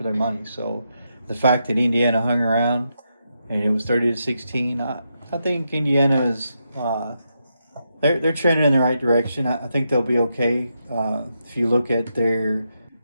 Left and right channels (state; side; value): inverted; both; correlation -0.83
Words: their money. So the fact that Indiana hung around and it was 30-16. I think Indiana's they're trending in the right direction. I think they'll be okay. If you look at their